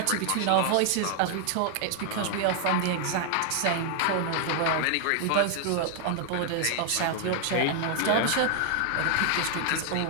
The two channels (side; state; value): both; different; correlation 0.00